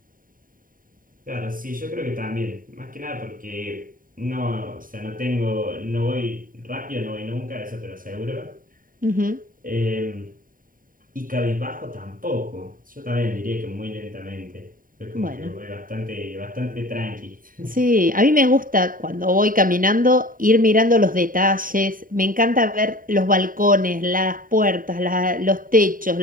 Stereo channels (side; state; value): left; late; 0.40 ms